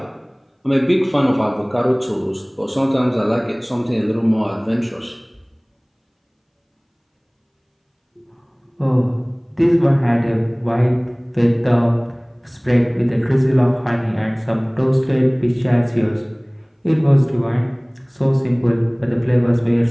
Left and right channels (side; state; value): both; identical; correlation 1.00